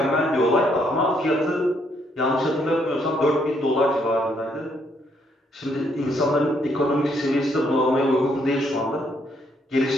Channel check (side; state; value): both; normal; correlation 0.71